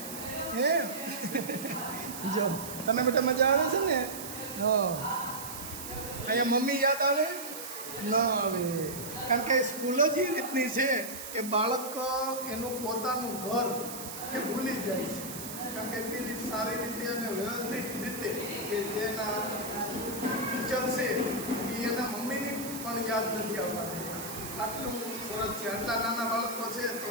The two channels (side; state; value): right; noise; hiss, 9 dB below the sound